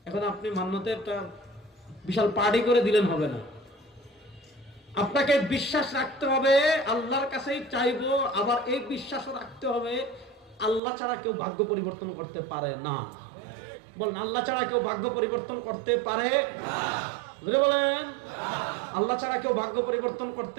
এখন আপনি মান্নতের একটা বিশাল পার্টি করে দিলেন হবে না, আপনাকে বিশ্বাস রাখতে হবে আল্লাহর কাছেই চাইবো, আবার এই বিশ্বাসও রাখতে হবে আল্লাহ ছাড়া কেউ ভাগ্য পরিবর্তন করতে পারে না। বলেন, আল্লাহ ছাড়া কেউ ভাগ্য পরিবর্তন করতে পারে? জোরে বলেন, আল্লাহ ছাড়া কেউ ভাগ্য পরিবর্তন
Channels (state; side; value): drops out; left; at 10.8 s